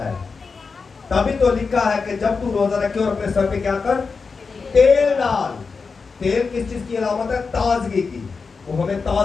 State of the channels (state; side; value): quieter; right; 4.8 dB